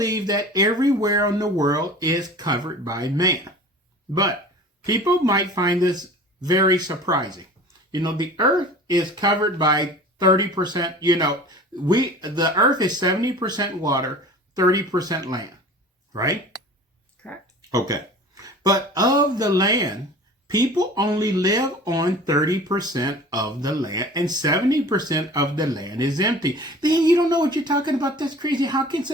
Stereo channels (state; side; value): normal; both; correlation 0.41